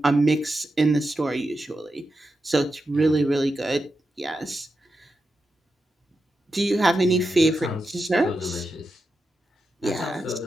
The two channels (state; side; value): normal; both; correlation 0.88